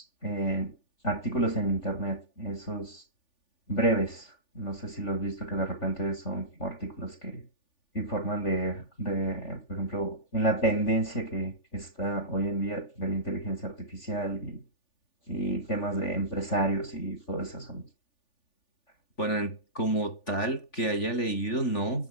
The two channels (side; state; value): right; late; 3.4 ms